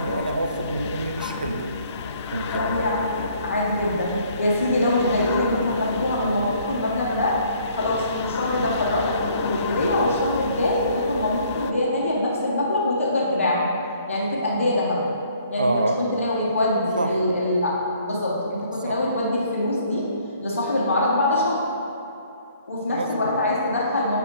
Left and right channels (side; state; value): both; inverted; correlation -0.61